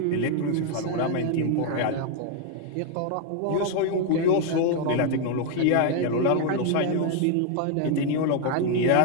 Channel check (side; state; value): both; different; correlation 0.01